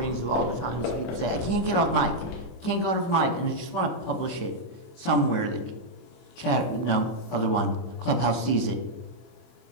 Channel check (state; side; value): late; right; 24 ms